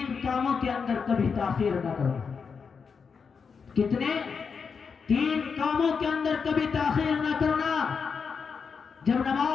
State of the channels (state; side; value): quieter; right; 5.8 dB